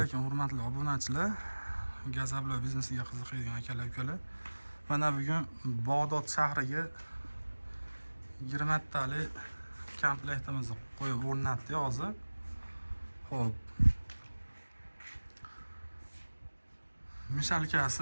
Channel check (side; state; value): both; inverted; correlation -1.00